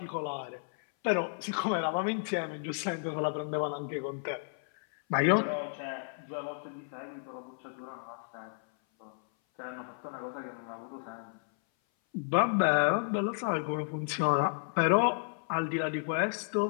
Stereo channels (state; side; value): silent; right; 56 dB below the other